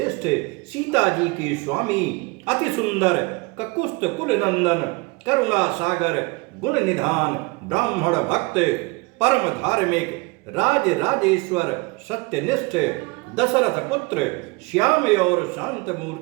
सीता जी के स्वामी अति सुंदर ककुस्थ कुल नंदन करुणा सागर गुण निधान ब्राह्मण भक्त परम धार्मिक राज राजेश्वर सत्यनिष्ठ दशरथ पुत्र श्याम और शांत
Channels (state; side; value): quieter; left; 26.7 dB